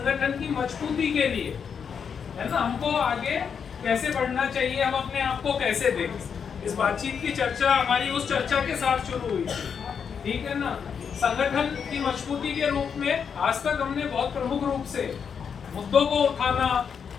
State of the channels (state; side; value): quieter; right; 6.8 dB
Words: की मजबूती के लिए, है ना, हमको आगे कैसे बढ़ना चाहिए, हम अपने आप को कैसे देखें। इस बातचीत की चर्चा हमारी उस चर्चा के साथ शुरू हुई थी, ठीक है ना। संगठन की मजबूती के रूप में आज तक हमने बहुत प्रमुख रूप से मुद्दों को उठाना,